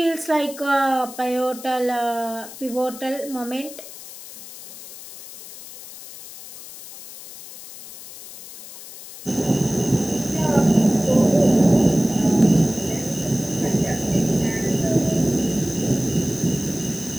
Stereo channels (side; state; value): left; noise; hiss, 15 dB below the sound